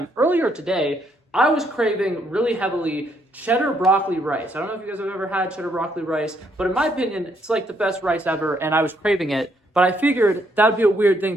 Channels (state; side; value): normal; both; correlation 0.72